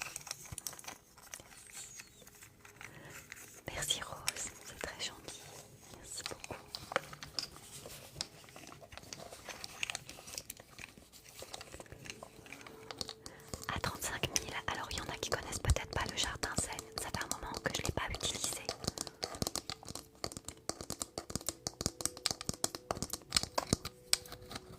Merci Rose, c'est très gentil. Merci beaucoup. À 35 000, alors il y en a qui connaissent peut-être pas le jardin Zen. Ça fait un moment que je ne l'ai pas utilisé.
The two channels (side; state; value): both; identical; correlation 1.00